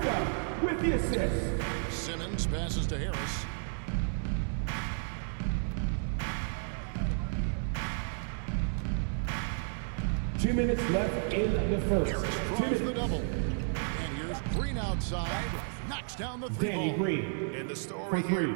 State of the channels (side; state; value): left; silent; 56 dB below the other